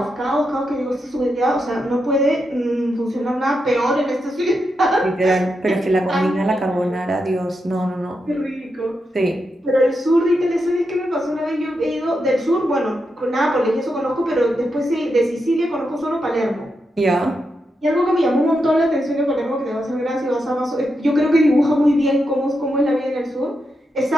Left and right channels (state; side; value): normal; both; correlation 0.85